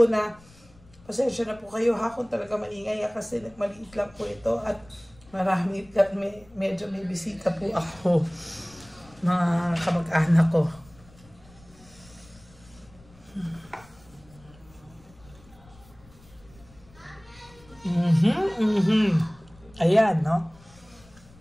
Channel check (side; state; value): left; noise; rumble, 25 dB below the sound